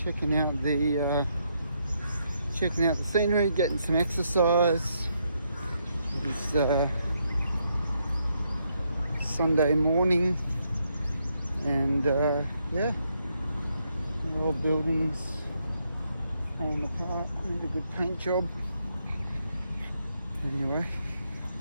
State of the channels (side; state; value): both; inverted; correlation -0.77